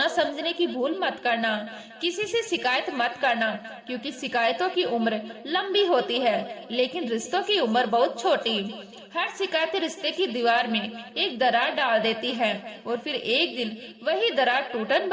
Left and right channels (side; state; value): both; identical; correlation 1.00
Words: समझने की भूल मत करना। किसी से शिकायत मत करना, क्योंकि शिकायतों की उम्र लंबी होती है लेकिन रिश्तों की उम्र बहुत छोटी। हर शिकायत रिश्ते की दीवार में एक दरार डाल देती है और फिर एक दिन वही दरार टूटन